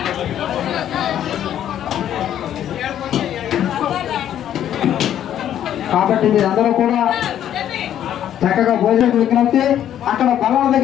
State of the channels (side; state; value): right; quieter; 10.7 dB